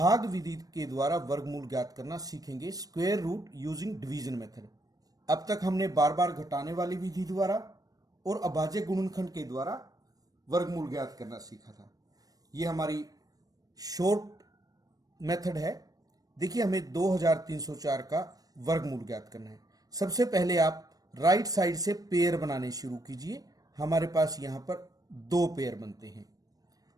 विधि के द्वारा वर्गमूल ज्ञात करना सीखेंगे, square root using division method. अब तक हमने बार बार घटाने वाली विधि द्वारा और अभाज्य गुणनखंड के द्वारा वर्गमूल ज्ञात करना सीखा था। ये हमारी शॉर्ट मेथड है। देखिए, हमें 2304 का वर्गमूल ज्ञात करना है। सबसे पहले आप राइट साइड से पेयर बनाने शुरू कीजिए। हमारे पास यहां पर 2 पेयर बनते हैं।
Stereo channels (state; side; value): late; left; 0.18 ms